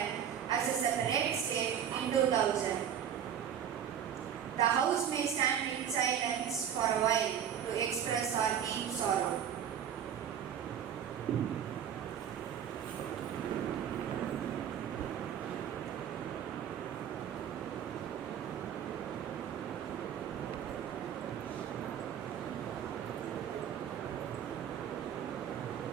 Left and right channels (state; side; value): quieter; left; 8.9 dB